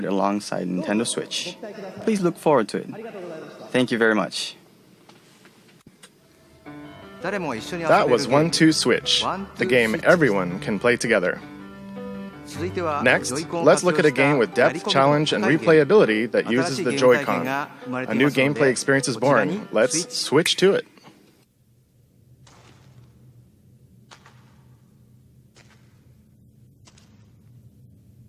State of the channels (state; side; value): identical; both; correlation 1.00